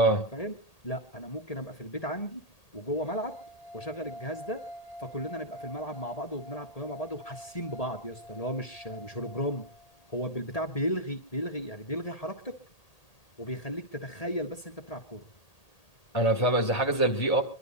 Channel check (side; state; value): right; late; 1.8 ms